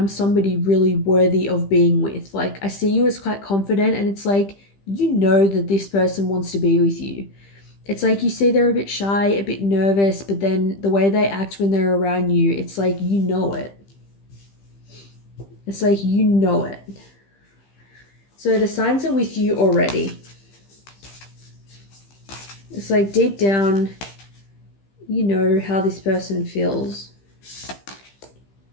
somebody really worthy of being with. Like I see you as quite confident, and it's like you know that this person wants to be with you. It's like you see they're a bit shy, a bit nervous, but then the way they act when they're around you, it's like you know it. It's like you know it. So the signs are with you already. It's like deep down, you know how this person feels.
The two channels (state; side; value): late; right; 15 ms